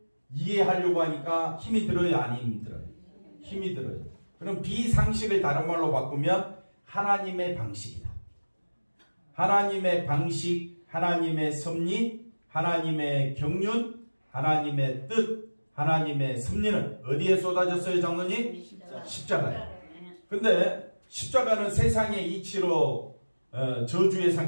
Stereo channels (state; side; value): inverted; both; correlation -1.00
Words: 이해하려고 하니까 힘이 들어요? 안 힘이 들어요? 힘이 들어요. 그럼 비상식을 다른 말로 바꾸면 하나님의 방식이다. 하나님의 방식, 하나님의 섭리, 하나님의 경륜, 하나님의 뜻, 하나님의 섭리는 어디에 쏟아졌어요, 장로님? 십자가에. 근데 십자가는 세상의 이치로 저주의